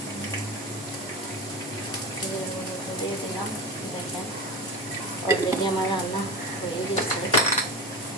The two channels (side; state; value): both; normal; correlation 0.26